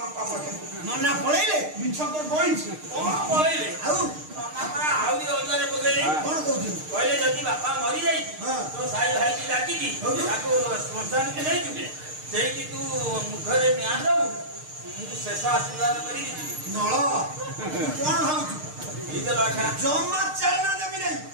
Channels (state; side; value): late; left; 6.5 ms